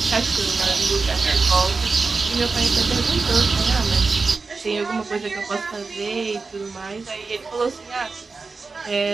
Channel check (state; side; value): quieter; left; 4.2 dB